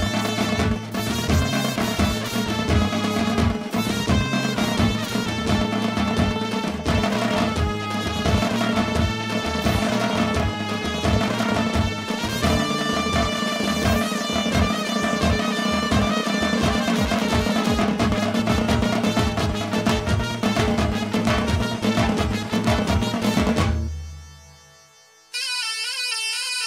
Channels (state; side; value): identical; both; correlation 1.00